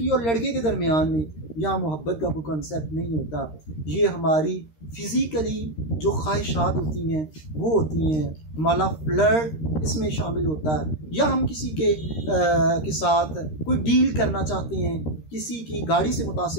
और लड़के के दरमियान में, यहाँ मोहब्बत का कोई कंसेप्ट नहीं होता। ये हमारी फिज़िकली जो ख्वाहिशात होती हैं वो होती हैं, हमारा फ्लर्ट इसमें शामिल होता है, या हम किसी के साथ कोई डील करना चाहते हैं, किसी की गाड़ी से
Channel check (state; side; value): late; right; 13 ms